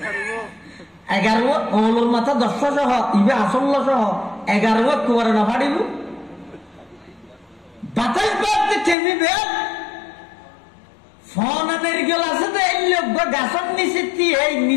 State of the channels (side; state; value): right; drops out; at 9.0 s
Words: 11 ওলোর মাথা 10 সহ ইবে আসল্ল সহ 11 কোবরা না ফাড়িব বাতাস বাদতে টেমিবে ফোন নারকেল আছে তো এই লোক গাছের নিচে এই